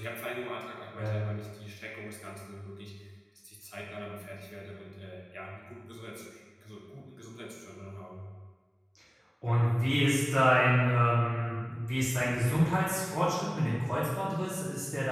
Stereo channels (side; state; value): both; identical; correlation 1.00